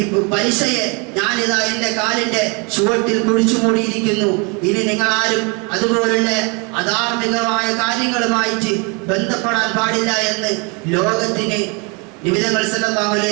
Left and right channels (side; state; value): left; quieter; 31.7 dB